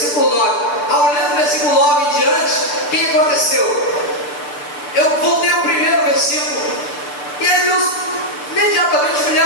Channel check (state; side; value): late; right; 6.8 ms